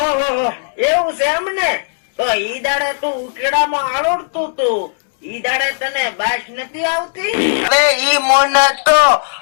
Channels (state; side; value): silent; right; 68 dB below the other